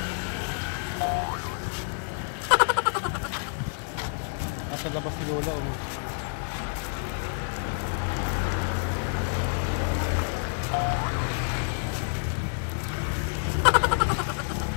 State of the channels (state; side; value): silent; right; digital silence